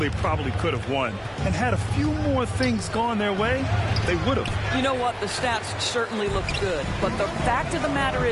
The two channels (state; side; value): identical; both; correlation 1.00